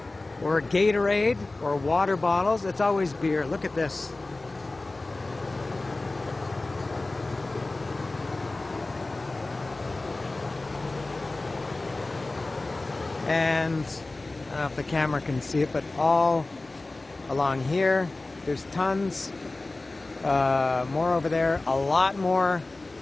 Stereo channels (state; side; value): quieter; right; 3.1 dB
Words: or Gatorade or water bottles. It's always beer. Look at this. And I don't know if the camera can see it, but all along here there's tons, more over there, a lot more